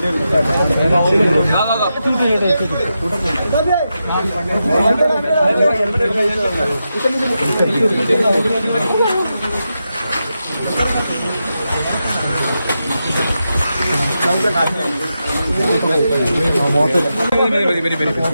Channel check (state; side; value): inverted; both; correlation -0.88